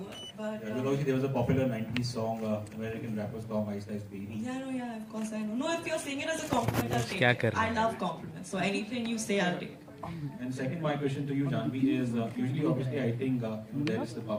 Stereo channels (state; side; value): identical; both; correlation 1.00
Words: But Yeah, because there was a popular 90s song, American rapper song, Ice Ice Baby. yeah, of course I know. No, if you're saying it as a compliment, I'll take it. I love compliments. So anything you say, I'll take. And second, my question to you, Janhavi, is usually, obviously, I think there is the